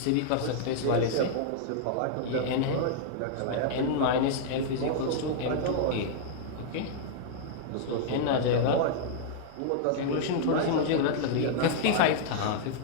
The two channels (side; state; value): both; different; correlation -0.01